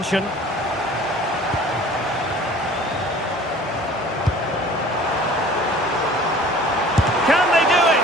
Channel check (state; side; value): normal; both; correlation 0.47